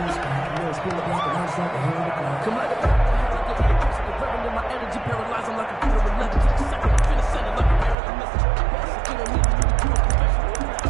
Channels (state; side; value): drops out; left; at 8.0 s